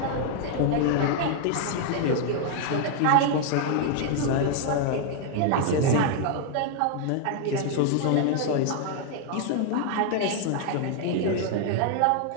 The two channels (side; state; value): both; different; correlation 0.00